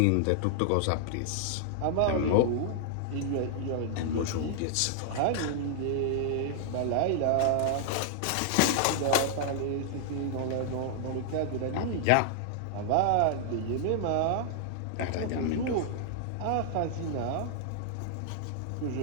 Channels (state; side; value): different; both; correlation 0.00